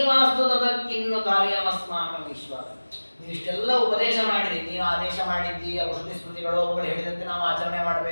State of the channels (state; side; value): inverted; both; correlation -1.00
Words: ಕಾರ್ಯಮಸ್ಮಾಕಂ ಈಶ್ವರ. ನೀವು ಇಷ್ಟೆಲ್ಲ ಉಪದೇಶ ಮಾಡಿರಿ, ನೀವು ಆದೇಶ ಮಾಡಿದ್ದಿ, ಔಷಧಿ ಸ್ಮೃತಿಗಳು ಅವುಗಳು ಹೇಳಿದಂತೆ ನಾವು ಆಚರಣೆ